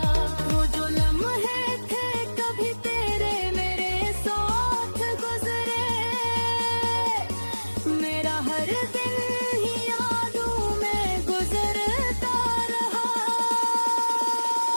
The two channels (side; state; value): both; inverted; correlation -1.00